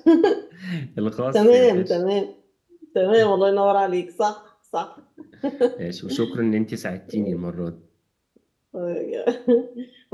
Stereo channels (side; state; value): both; identical; correlation 1.00